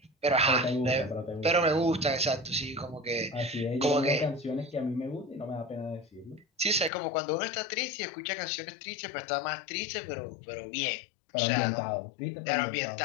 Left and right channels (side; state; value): right; drops out; at 6.9 s